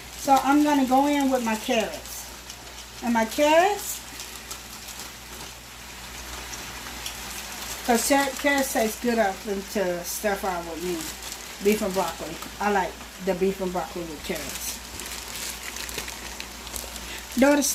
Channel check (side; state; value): both; identical; correlation 1.00